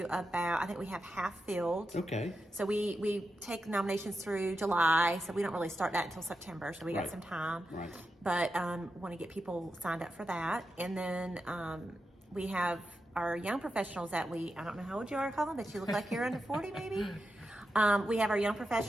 I think we have half filled. Okay. So we take nominations through July, so we don't really start that until September, so we got some time. Right. But want to get people signed up for that. And then we have our young professionals that I don't know how old you are, Colin, but you look like you're under 40 maybe. We have our Young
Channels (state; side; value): normal; both; correlation 0.88